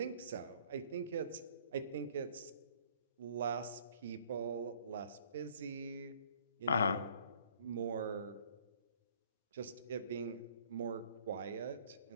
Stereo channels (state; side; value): inverted; both; correlation -0.58